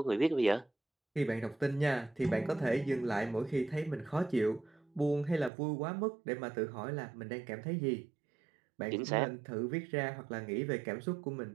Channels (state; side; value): drops out; left; at 5.5 s